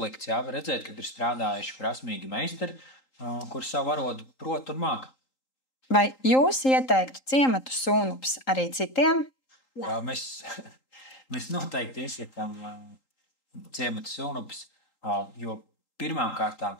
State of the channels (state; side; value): late; right; 3.8 ms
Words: Jā, var redzēt, ka ir strādājuši prasmīgi meistari, kur savu arodu prot un māk. Vai jūs ieteiktu ciematu Sūnupis arī citiem? Mēs noteikti iesakām ciematu Sūnupis, jo pirmām kārtām